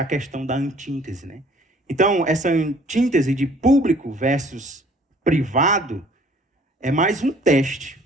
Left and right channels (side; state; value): both; normal; correlation 0.55